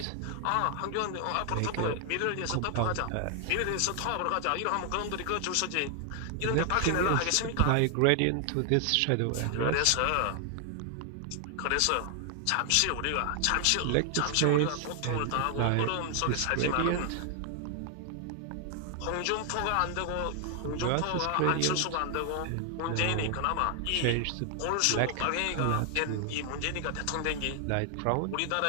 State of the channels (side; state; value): both; different; correlation 0.00